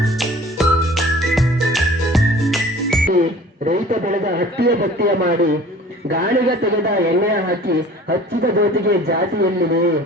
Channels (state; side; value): normal; both; correlation 0.46